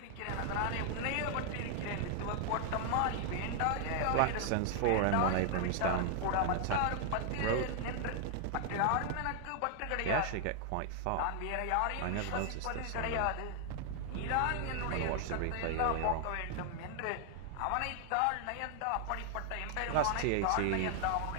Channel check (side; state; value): both; different; correlation 0.00